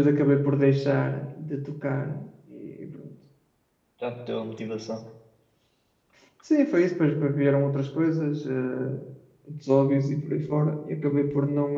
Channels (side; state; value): both; identical; correlation 1.00